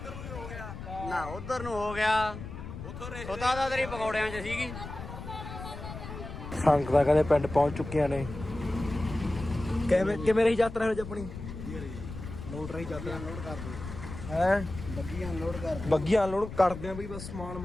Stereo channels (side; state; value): left; noise; rumble, 10 dB below the sound